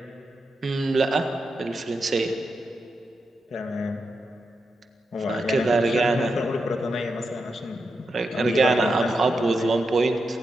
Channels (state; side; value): normal; both; correlation 0.87